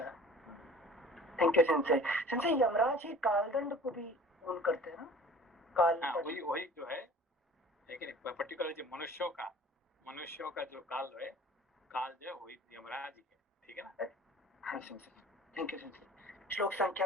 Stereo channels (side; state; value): both; normal; correlation 0.45